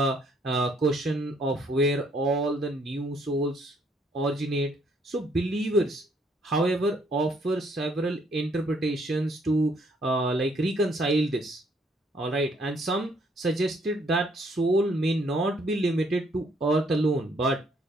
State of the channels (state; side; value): normal; both; correlation 0.67